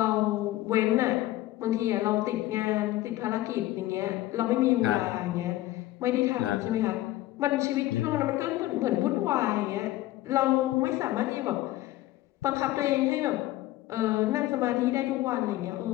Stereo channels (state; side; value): quieter; right; 16.2 dB